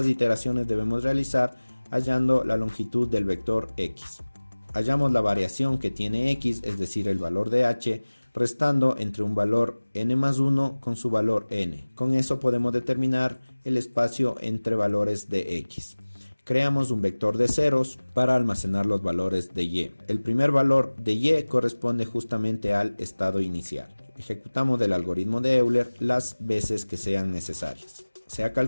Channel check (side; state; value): both; inverted; correlation -1.00